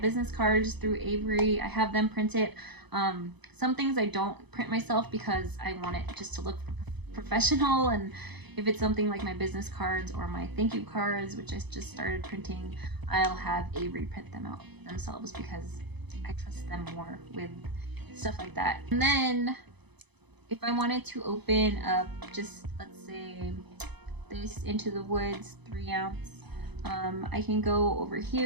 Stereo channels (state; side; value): late; left; 0.99 ms